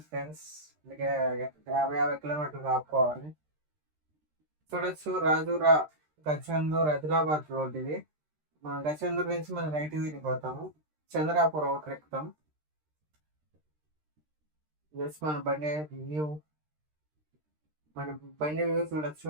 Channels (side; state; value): left; late; 13 ms